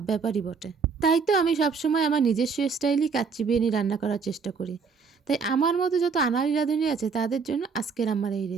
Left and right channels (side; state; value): left; quieter; 5.3 dB